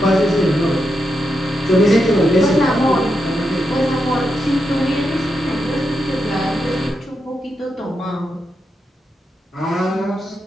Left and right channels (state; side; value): normal; both; correlation 0.85